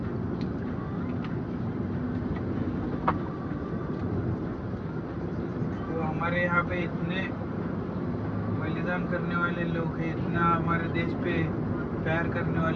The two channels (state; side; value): identical; both; correlation 1.00